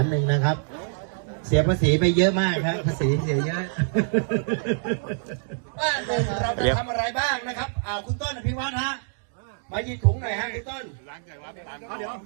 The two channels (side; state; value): left; silent; digital silence